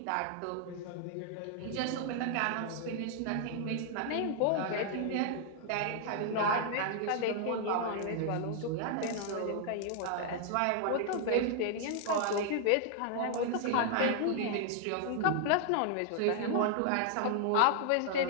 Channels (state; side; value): different; both; correlation 0.00